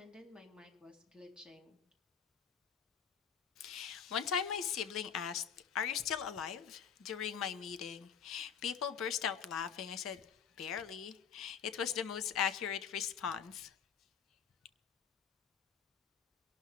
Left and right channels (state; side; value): quieter; right; 7.7 dB